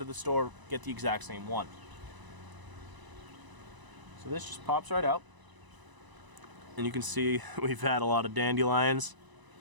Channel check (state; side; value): late; left; 1.0 ms